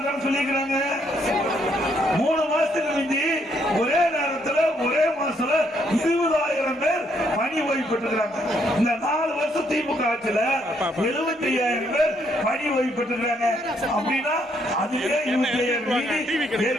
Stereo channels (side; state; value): both; normal; correlation 0.72